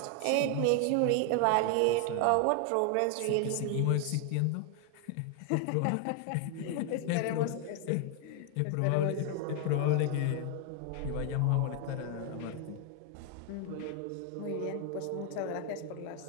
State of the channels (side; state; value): both; different; correlation 0.00